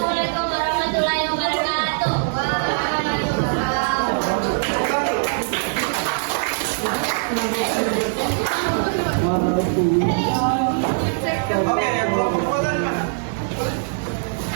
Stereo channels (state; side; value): silent; left; 56 dB below the other